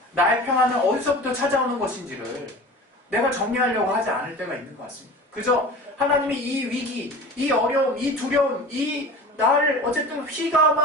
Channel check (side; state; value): both; normal; correlation 0.37